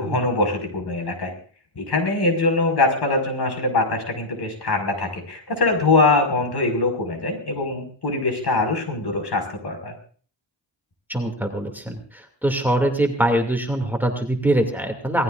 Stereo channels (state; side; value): normal; both; correlation 0.16